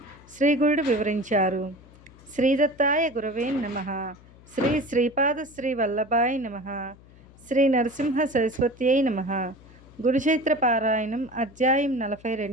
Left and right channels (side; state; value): left; noise; hum, 23 dB below the sound